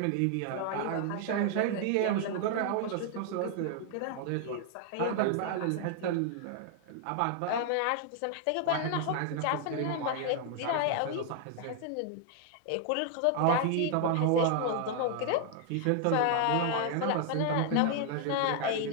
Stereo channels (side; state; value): both; different; correlation 0.00